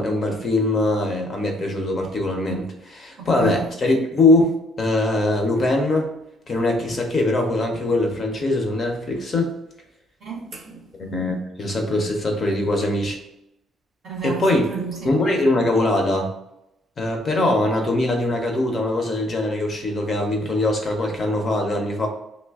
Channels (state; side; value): normal; both; correlation 0.67